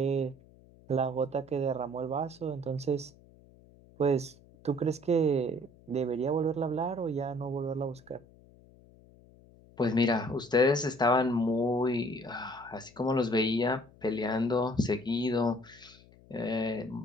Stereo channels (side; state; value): left; noise; hum, 25 dB below the sound